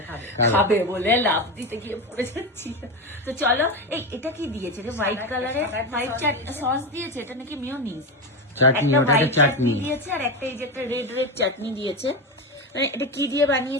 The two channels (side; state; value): both; normal; correlation 0.16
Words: খাবে বলে লাভ দিতে গিয়ে পড়ে যাচ্ছি। তো চলো, এই এটা কি দিয়েছে রে? হোয়াইট কালারের হোয়াইট সস দিয়েছে, এটা নাকি মিয়োনিজ। চাটনি, একটা ওটা হোয়াইট চাটনি চাটনি দিয়েছে, আর একটা এই যে একটা রেড চাটনি দিয়েছে। মানে এটা কি দিয়ে